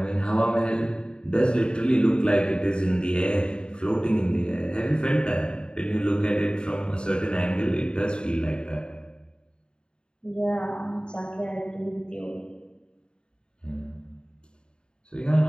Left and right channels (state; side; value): late; right; 0.050 ms